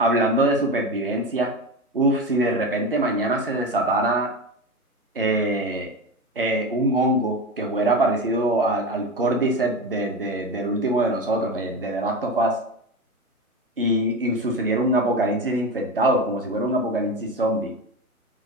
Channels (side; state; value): both; normal; correlation 0.23